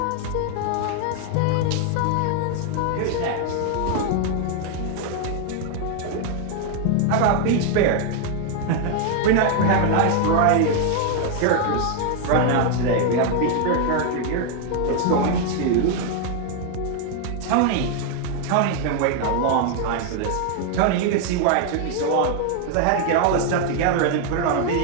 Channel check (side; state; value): both; different; correlation 0.00